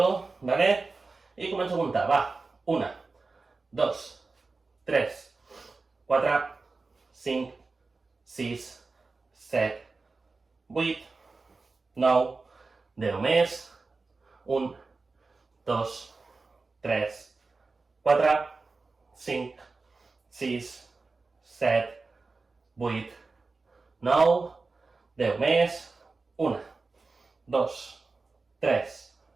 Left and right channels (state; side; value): quieter; left; 3.9 dB